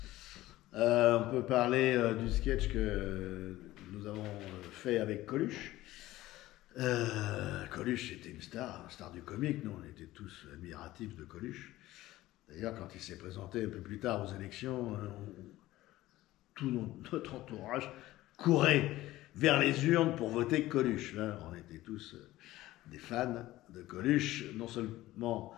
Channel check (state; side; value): quieter; right; 16.4 dB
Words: On peut parler du sketch que nous avons fait avec Coluche. Coluche était une star du comique. Nous, on était tous admiratifs de Coluche. D'ailleurs, quand il s'est présenté un peu plus tard aux élections, tout notre entourage courait vers les urnes pour voter Coluche. Là, on était tous des fans de Coluche, non seulement